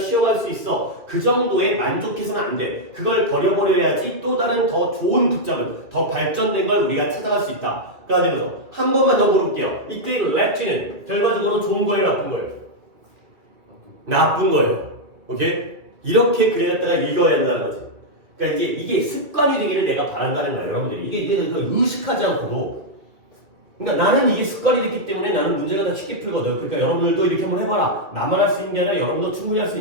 수 있어. 그 정도에 만족해서는 안 돼. 그걸 버려버려야지 또 다른 더 좋은 붙잡은, 더 발전된 걸 우리가 찾아갈 수 있다. 그래가지고 한 번만 더 물어볼게요. 이때 랩지는 결과적으로 좋은 거예요, 나쁜 거예요? 나쁜 거예요. 오케이? 이렇게 그래놨다가 읽어야 한다는 거지. 그러니까 이게 습관이 되기를 내가 바란다는 거예요, 여러분들이. 이게 내가 의식하지 않고도. 그러니까 나는 이게 습관이 됐기 때문에 나는 문제가 더 쉽게 풀거든. 그러니까 여러분들도 이렇게 한번 해봐라. 나만 할 수 있는 게 아니라 여러분도 충분히 할 수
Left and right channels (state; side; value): late; left; 2.4 ms